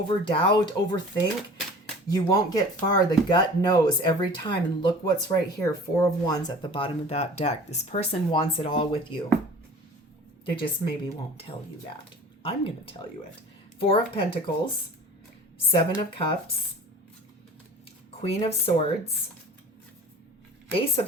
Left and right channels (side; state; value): both; normal; correlation 0.43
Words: doubt, overthink. You won't get far. The gut knows every time. And look what's right here. 4 of Wands at the bottom of that deck. This person wants it all with you. They just maybe won't tell you that. I'm going to tell you it. 4 of Pentacles, 7 of Cups, Queen of Swords, Ace of